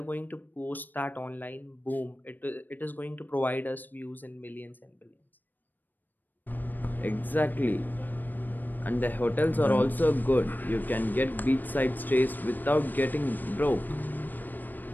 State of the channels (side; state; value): right; late; 0.089 ms